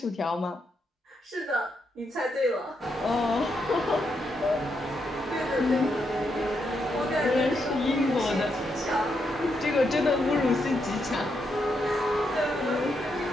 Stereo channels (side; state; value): both; normal; correlation 0.81